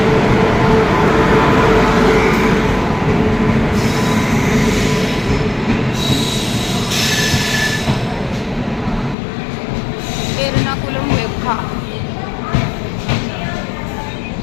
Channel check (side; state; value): right; drops out; at 9.2 s